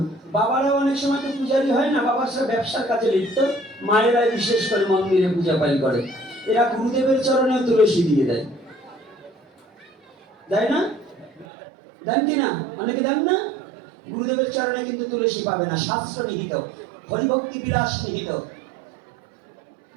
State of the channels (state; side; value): drops out; left; at 11.5 s